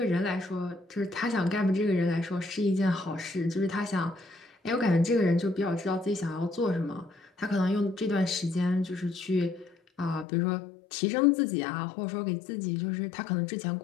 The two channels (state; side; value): drops out; right; at 10.2 s